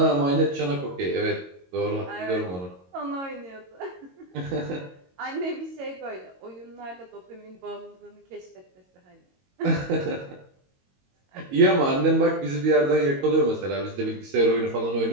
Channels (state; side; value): late; left; 22 ms